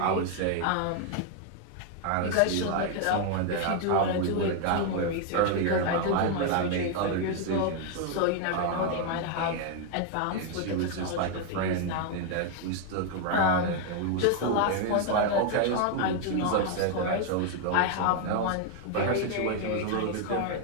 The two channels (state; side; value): different; both; correlation 0.00